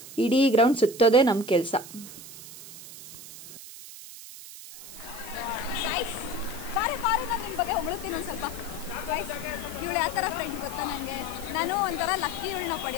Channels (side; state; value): right; noise; hiss, 14 dB below the sound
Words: ಇಡೀ ಗ್ರೌಂಡ್ ಸುತ್ತೋದೇ ನಮ್ಮ ಕೆಲಸ. ಬಾರಿ ನಾನು ನಿಮ್ಮ ಬಗ್ಗೆ ಹೊಗಳುತ್ತೀನಿ ಒಂದು ಸ್ವಲ್ಪ. ಇವಳು ಯಾವ ಥರ ಫ್ರೆಂಡ್ ಗೊತ್ತಾ ನನಗೆ? ನಾನು ಒಂಥರ ಲಕ್ಕಿ ಇವಳನ್ನ